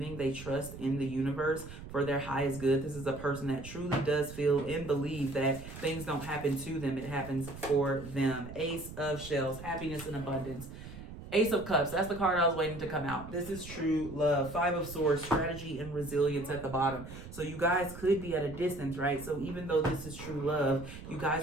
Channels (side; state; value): right; noise; rumble, 13 dB below the sound